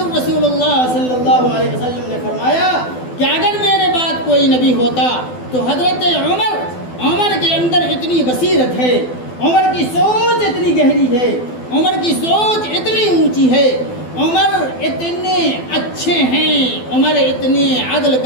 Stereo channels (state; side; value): late; right; 12 ms